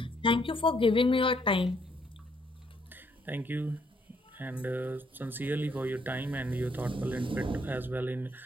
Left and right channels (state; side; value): normal; both; correlation 0.70